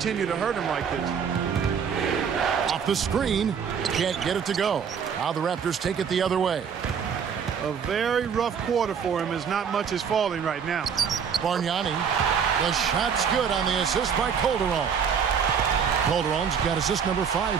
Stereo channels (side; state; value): left; quieter; 7.0 dB